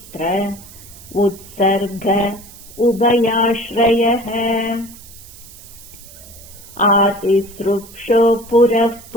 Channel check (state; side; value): noise; right; hiss, 19 dB below the sound